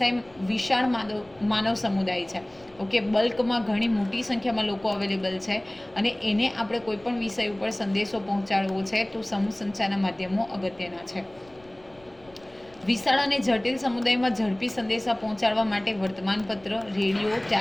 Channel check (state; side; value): noise; left; rumble, 28 dB below the sound